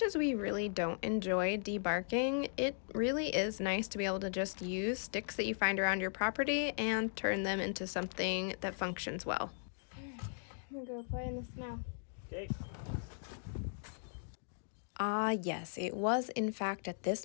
as we really don't enjoy debarking, it really is nice to be able to just use sticks that you find around your property and turn them into something that functions well. I'm gonna go play in the snow. Okay. Ah, yes, it was in fact at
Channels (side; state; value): right; silent; digital silence